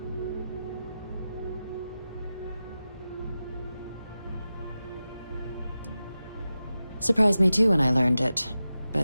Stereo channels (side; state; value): both; inverted; correlation -0.93